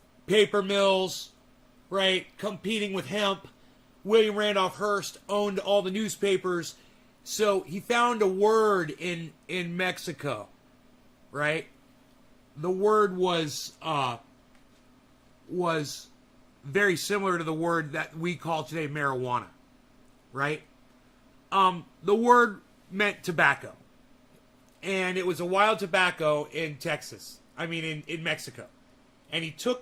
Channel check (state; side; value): identical; both; correlation 1.00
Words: Paper mills, right? Competing with hemp. William Randolph Hearst owned all the newspapers. So he found a word in Mexico, right? The word was very similar to the word that we call today marijuana, right? The word meant tobacco, and it was a wild tobacco in Texas. I mean, in Mexico. And he